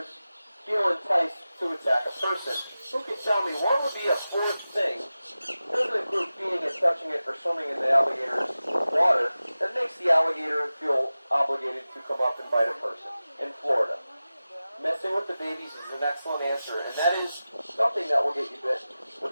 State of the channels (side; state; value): both; inverted; correlation -0.95